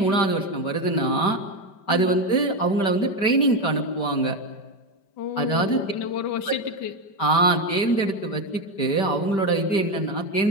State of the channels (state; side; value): late; right; 5.1 ms